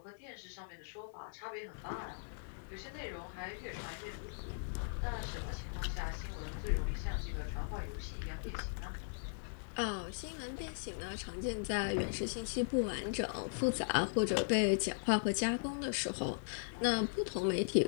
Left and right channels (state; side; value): silent; right; digital silence